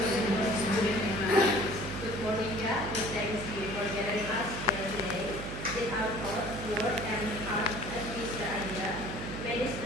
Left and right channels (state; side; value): noise; right; hum, 8 dB below the sound